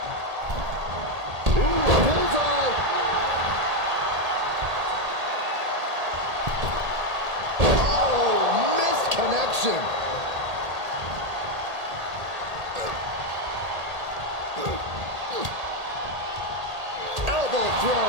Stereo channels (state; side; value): late; left; 1.8 ms